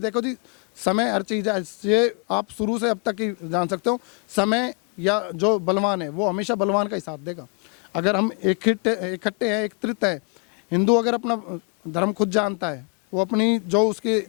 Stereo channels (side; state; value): right; quieter; 35.6 dB